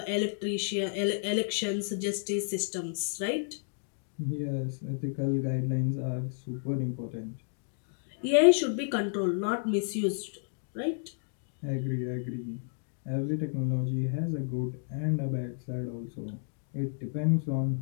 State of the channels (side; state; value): right; silent; digital silence